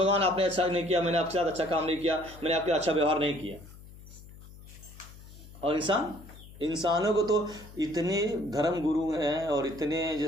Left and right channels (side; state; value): left; noise; hum, 18 dB below the sound